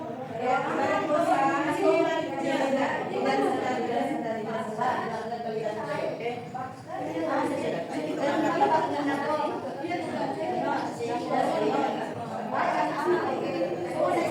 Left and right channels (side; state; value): both; identical; correlation 1.00